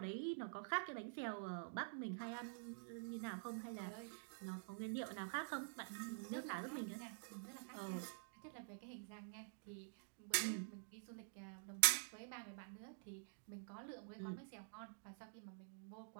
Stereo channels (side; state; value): left; silent; digital silence